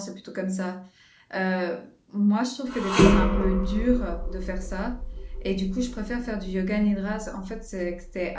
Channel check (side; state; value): both; identical; correlation 1.00